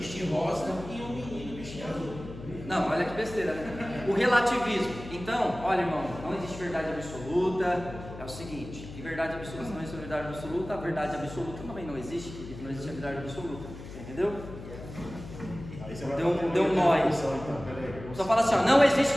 rosa e um menino vestir azul. Não, olha que besteira, né? O relativismo. Então, olha, irmão, não existe verdade absoluta. É o seguinte, e verdade absoluta, se não existe verdade absoluta, a verdade absoluta também não existe, porque não existe a verdade absoluta. Entendeu? Deu um nó aí. Só fala assim, ó, não existe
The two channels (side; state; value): left; noise; hum, 13 dB below the sound